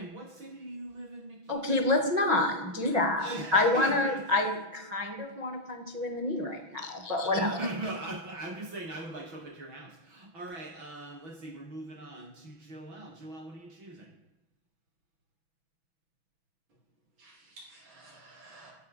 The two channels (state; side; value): late; left; 6.1 ms